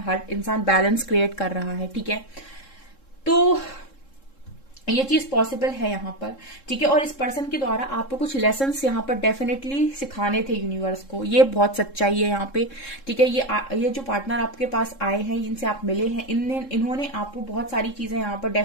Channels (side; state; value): right; late; 3.7 ms